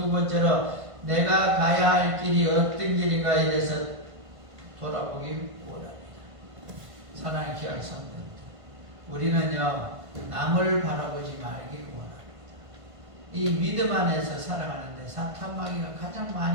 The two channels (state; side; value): late; left; 1.5 ms